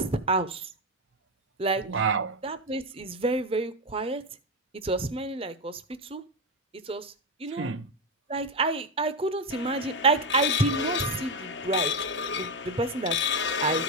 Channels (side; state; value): both; normal; correlation 0.10